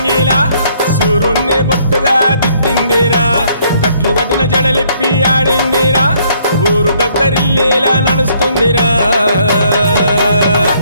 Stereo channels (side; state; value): both; inverted; correlation -0.66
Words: సూరుణ్ణి బొట్టుగా దిద్దిందిరా కట్లు కట్టిన జడలిప్పి ఆడిందిరా ఊరు దద్దరిల్లేలా నడుస్తుందిరా